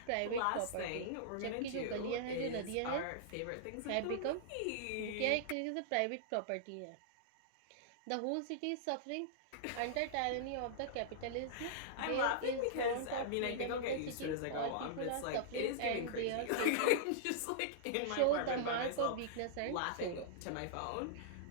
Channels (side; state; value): both; different; correlation -0.02